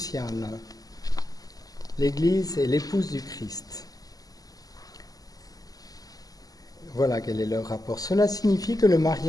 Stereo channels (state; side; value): late; right; 0.18 ms